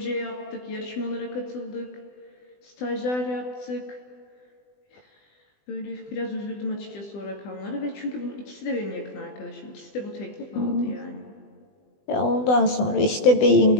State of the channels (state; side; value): late; right; 20 ms